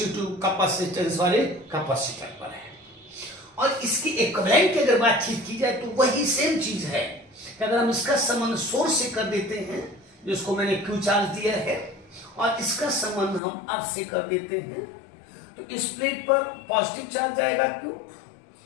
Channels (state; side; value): drops out; right; at 13.4 s